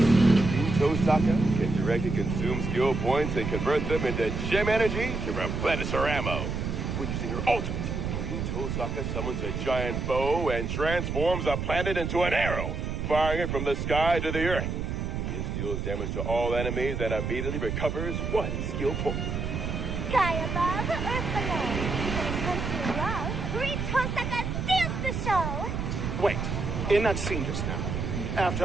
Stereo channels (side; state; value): right; noise; rumble, 3 dB below the sound